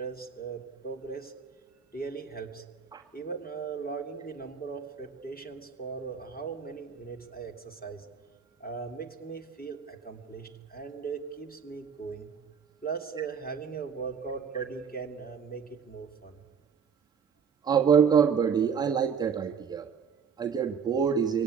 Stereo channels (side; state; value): left; quieter; 6.7 dB